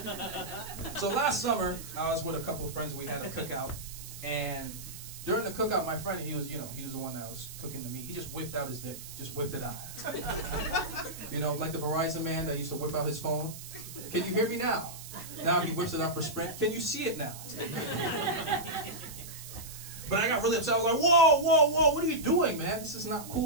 So last summer, I was with a couple of friends. We had a cookout, and during the cookout, my friend, he was the one that was cooking the meat. He just whipped out his dick, just whipped it out. Like the Verizon man that used to whip out his phone. Can you hear me now? Now he whips it out for Sprint. Can you see it now? But I got really upset. I was like, whoa, whoa, whoa, what are you doing, man? This is not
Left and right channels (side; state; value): right; noise; hiss, 13 dB below the sound